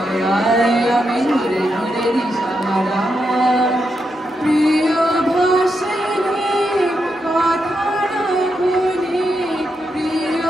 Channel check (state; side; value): normal; both; correlation 0.84